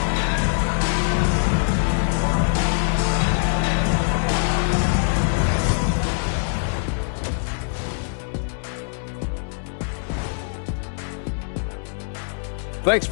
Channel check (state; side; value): silent; right; digital silence